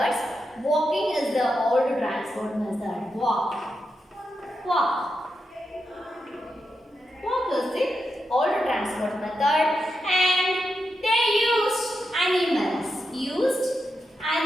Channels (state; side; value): normal; both; correlation 0.86